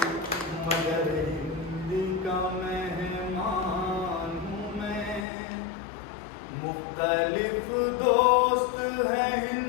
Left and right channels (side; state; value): right; drops out; at 5.2 s